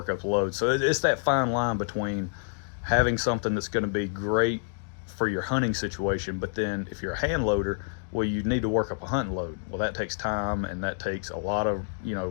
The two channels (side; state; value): right; silent; digital silence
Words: up load. So it's that fine line between having something that's going to be great for your hunting situation, but then if you're a hand loader, well, you need to work up a hunting load. Well, that takes time, and that takes a lot of